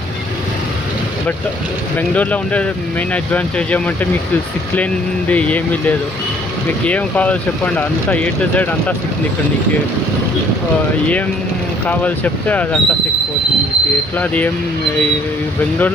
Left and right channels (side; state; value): both; normal; correlation 0.60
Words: బట్ బెంగళూరులో ఉండే మెయిన్ అడ్వాంటేజ్ ఏమంటే మీకు సిక్ లేనిది ఏమీ లేదు. మీకు ఏం కావాలో చెప్పండి, అంతా A to Z అంతా సిక్కింది ఇక్కడ. నీకు ఏం కావాలి చెప్తే అదంతా సిక్కిపోతుంది మీకు. ఎట్లా అది ఏం